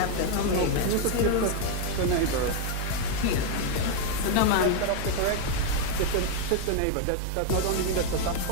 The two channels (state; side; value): different; both; correlation 0.01